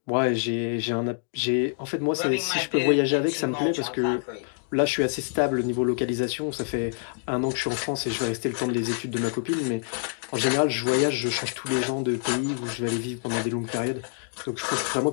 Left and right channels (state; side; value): silent; right; digital silence